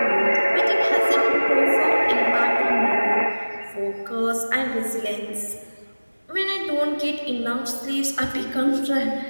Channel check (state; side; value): inverted; both; correlation -1.00